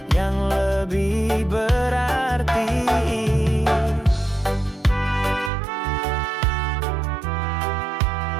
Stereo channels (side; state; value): left; drops out; at 5.5 s